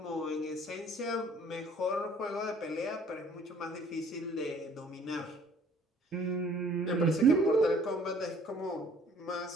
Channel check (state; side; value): normal; both; correlation 0.56